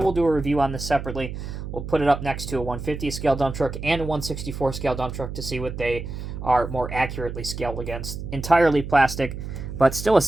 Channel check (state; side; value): noise; right; hum, 8 dB below the sound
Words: do a review on this separately. We'll put it up next to a 150 scale dump truck and a 164 scale dump truck to see what they are more accurately scaled against. Entirely plastic, but still a